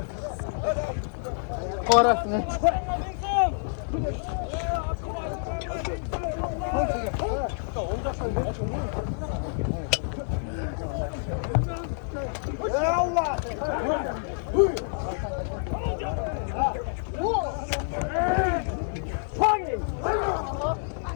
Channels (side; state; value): right; silent; digital silence